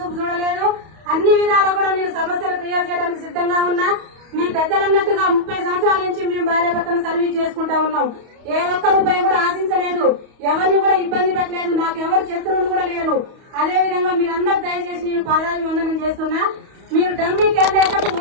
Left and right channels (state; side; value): late; left; 31 ms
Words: చూడలేదు. అన్ని విధాలా కూడా నేను సమస్యలు క్లియర్ చేయడానికి సిద్ధంగా ఉన్నా. మీ పెద్దలన్నట్టుగా 30 సంవత్సరాల నుంచి మేము భార్యాభర్తను సర్వీస్ చేసుకుంటా ఉన్నాం. ఏ ఒక్క రూపాయి కూడా ఆశించలేదు, ఎవరిని కూడా ఇబ్బంది పెట్టలేదు, నాకు ఎవరు శత్రువులు కూడా లేరు. అదే విధంగా మీరందరూ దయచేసి నేను పాదాభివందనం చేస్తున్నా. మీరు డమ్మీ క్యాండిడేట్లకు